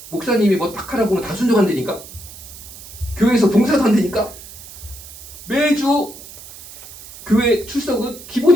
목사님이 딱 하라고 하면 다 순종한다니까. 교회에서 봉사도 한다니까. 매주 교회 출석은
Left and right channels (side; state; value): right; noise; hiss, 16 dB below the sound